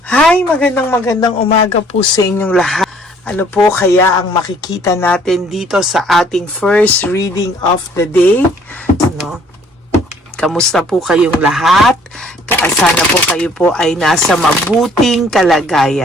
Hi, magandang umaga po sa inyong lahat. Ano po kaya ang makikita natin dito sa ating first reading of the day? No? Kamusta po kayong lahat? Sana po kayo po ay nasa mabuting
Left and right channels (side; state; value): both; normal; correlation 0.59